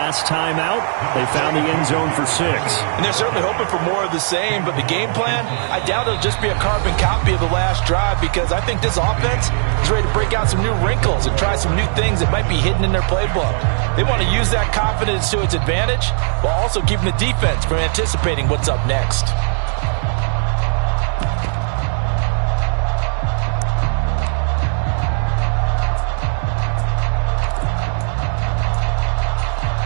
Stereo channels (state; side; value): silent; left; 59 dB below the other